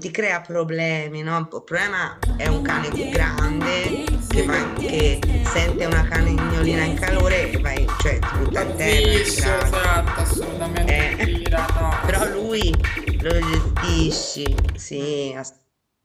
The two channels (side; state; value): both; identical; correlation 1.00